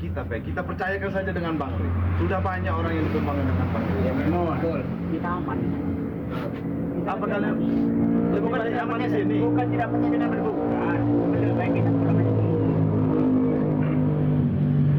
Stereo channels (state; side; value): identical; both; correlation 1.00